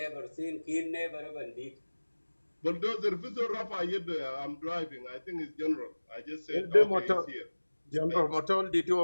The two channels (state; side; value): inverted; both; correlation -1.00